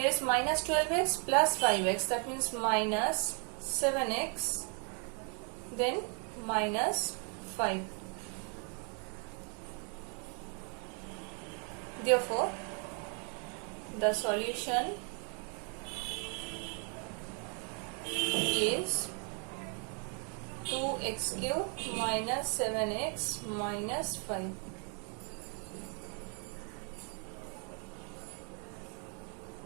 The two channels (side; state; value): left; quieter; 38.6 dB